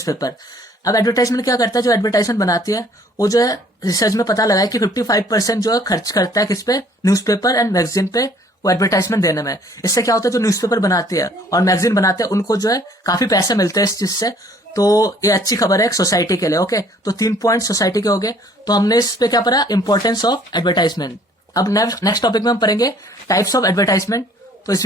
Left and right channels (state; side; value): normal; both; correlation 0.58